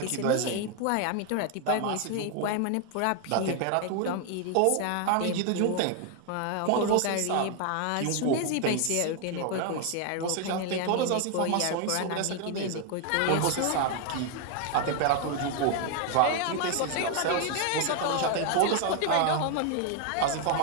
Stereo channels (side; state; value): both; different; correlation 0.01